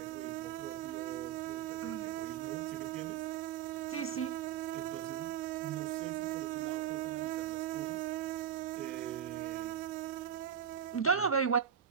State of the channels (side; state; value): left; quieter; 8.7 dB